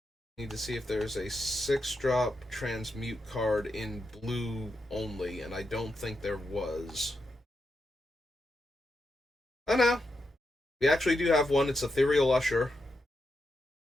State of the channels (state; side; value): normal; both; correlation 0.85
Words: Need to see if there's a 6-drop Transmute card in blue only, and I don't think there was. Oh no. We actually do have one. It's Ethereal Usher.